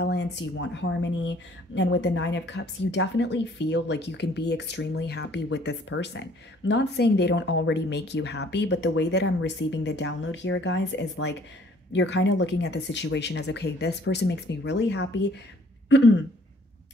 You want harmony. And with the Nine of Cups, you definitely feel like you can be extremely happy with this person. I'm not saying they don't already make you happy, but the way that I'm receiving the download here, guys, is like you're kind of looking at the situation as, okay, this person makes me really happy.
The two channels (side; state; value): both; normal; correlation 0.58